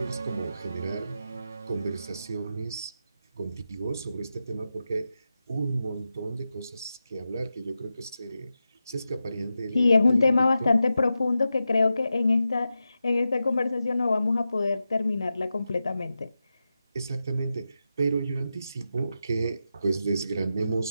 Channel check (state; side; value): inverted; both; correlation -0.90